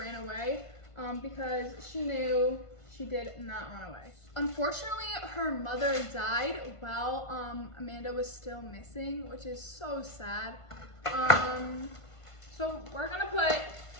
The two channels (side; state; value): right; late; 1.5 ms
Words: away. Because she knew she did not run away. Unfortunately, her mother died while Amanda was still missing, which is so sad. So we're gonna put